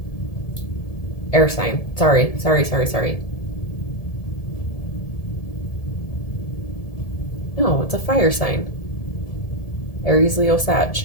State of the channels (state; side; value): late; right; 1.7 ms